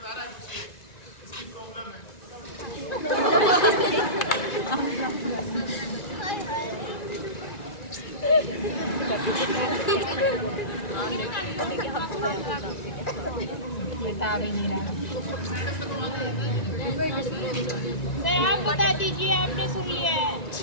बता भी नहीं रहा। सर आप बता दीजिए, आपने सुन लिया है।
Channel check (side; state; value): right; late; 1.9 ms